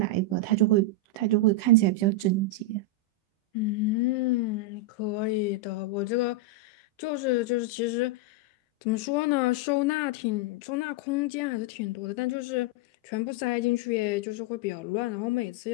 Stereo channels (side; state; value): right; late; 16 ms